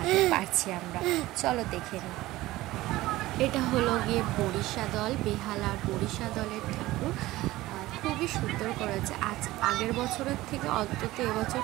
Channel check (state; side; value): quieter; left; 17.6 dB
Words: পারছি আমরা। চলো দেখে নিই। এটা হলো গিয়ে বরিশা দল, বেহালার বরিশা দলের ঠাকুর। খুবই সুন্দর করেছে, আগের বছরের থেকে অন্তত এবছর